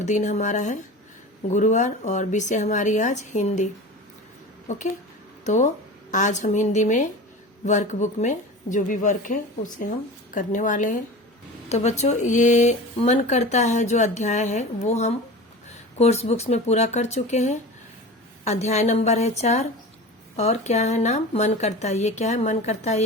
दिन हमारा है गुरुवार और विषय हमारी आज हिंदी। ओके, तो आज हम हिंदी में वर्कबुक में जो भी वर्क है उसे हम करने वाले हैं। तो बच्चों, ये मन करता है जो अध्याय है वो हम कोर्स बुक्स में पूरा कर चुके हैं। अध्याय नंबर है 4 और क्या है नाम, मन करता है। ये क्या है, मन करता है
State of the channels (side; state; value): both; normal; correlation 0.33